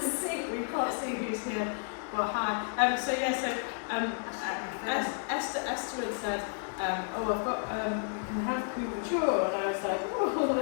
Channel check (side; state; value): right; silent; 57 dB below the other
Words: see. We can't see who's here, but hi. Esther had said, oh, I've got, you can have couverture, and I was like, oh,